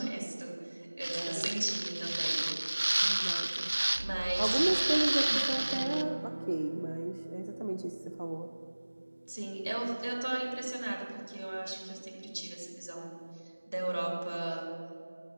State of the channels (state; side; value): inverted; both; correlation -1.00